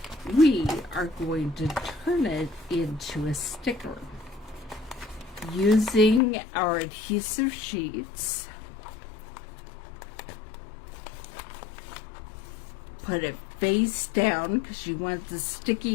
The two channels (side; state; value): right; drops out; at 6.2 s